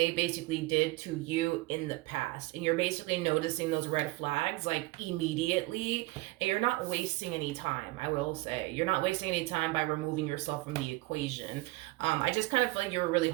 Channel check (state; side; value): quieter; left; 21.4 dB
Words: basically did to you in the past. And you're basically noticing those red flags like immediately, and you're not wasting any time. I will say you're not wasting any time by removing yourself from the equation. I just kind of feel like you were really